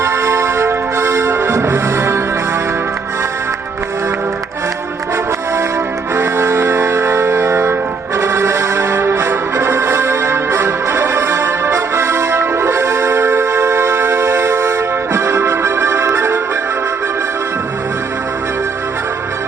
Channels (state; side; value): quieter; left; 4.9 dB